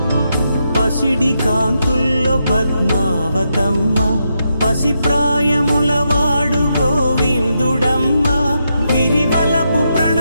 పసిడి కాంతుల్లో పద్మావతమ్మ, పసిప్రాయముల వాడు గోవిందుడమ్మ. విరివలపు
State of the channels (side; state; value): both; inverted; correlation -0.82